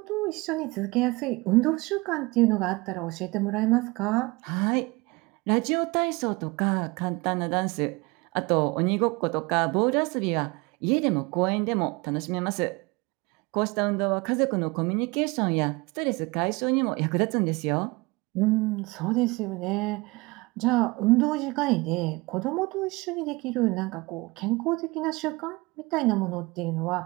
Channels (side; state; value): left; quieter; 24.5 dB